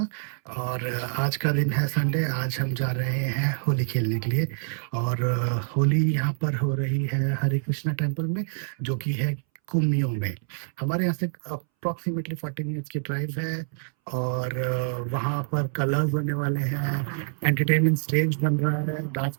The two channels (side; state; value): left; silent; 61 dB below the other